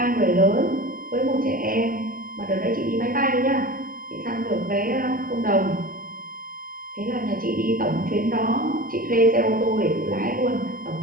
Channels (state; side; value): late; left; 0.41 ms